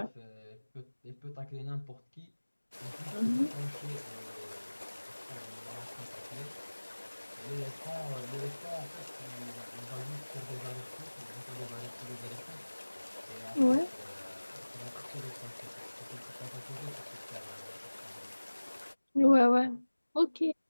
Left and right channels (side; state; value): both; inverted; correlation -1.00